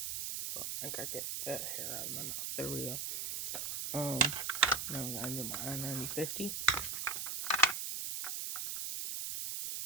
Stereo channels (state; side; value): noise; right; hiss, 3 dB below the sound